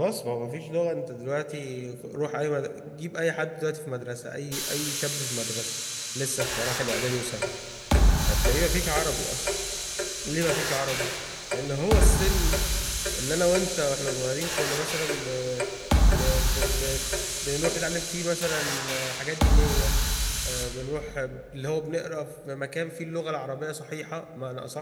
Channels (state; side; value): identical; both; correlation 1.00